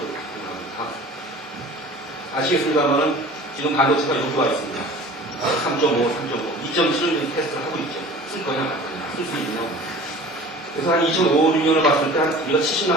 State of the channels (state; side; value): normal; both; correlation 0.42